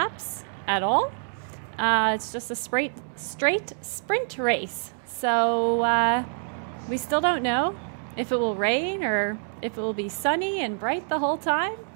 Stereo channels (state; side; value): silent; left; 58 dB below the other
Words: at all. It's just a straight sprint race. So we still don't know if it will rain or if it will be sunny and bright the whole time.